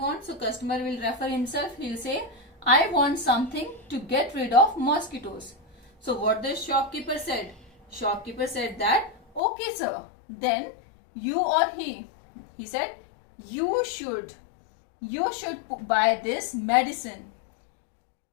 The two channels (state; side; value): drops out; right; at 9.4 s